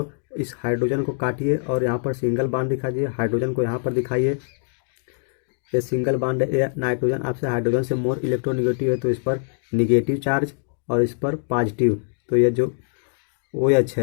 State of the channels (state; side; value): silent; right; 62 dB below the other